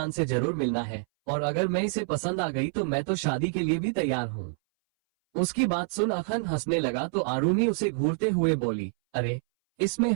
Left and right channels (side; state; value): left; silent; 59 dB below the other